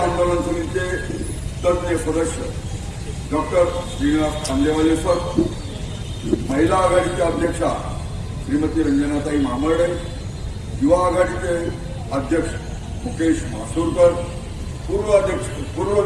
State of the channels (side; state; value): both; identical; correlation 1.00